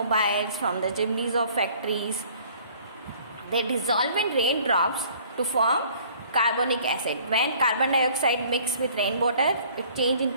from the chimneys of factories, they dissolve in raindrops to form carbonic acid. When carbon dioxide mix with rainwater, it change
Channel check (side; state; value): both; inverted; correlation -0.55